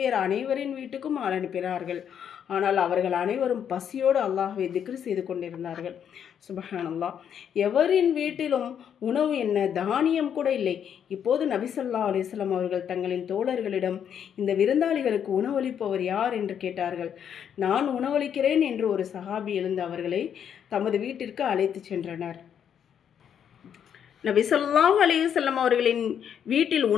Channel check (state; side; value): quieter; right; 8.6 dB